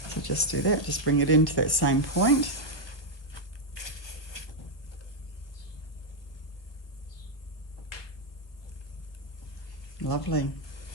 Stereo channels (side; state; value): right; late; 1.1 ms